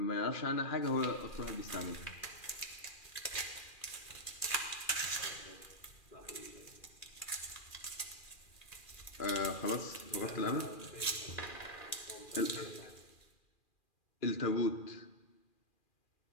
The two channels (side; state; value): right; late; 2.4 ms